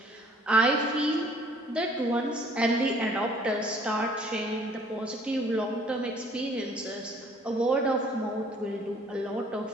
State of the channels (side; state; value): both; normal; correlation 0.57